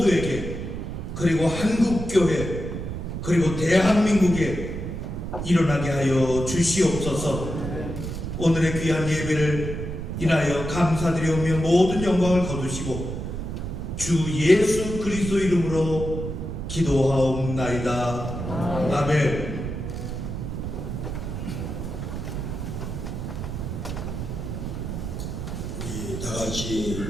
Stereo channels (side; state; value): right; noise; rumble, 5 dB below the sound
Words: 그리고 한국교회, 그리고 대한민국에 일어나게 하여 주시옵소서. 오늘의 귀한 예배를 인하여 감사드리오며 모든 영광을 거두시고 주 예수 그리스도 이름으로 기도하옵나이다. 아멘. 다 같이